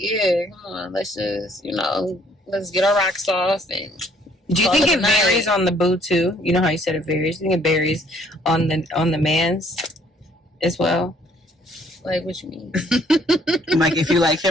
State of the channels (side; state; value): both; normal; correlation 0.63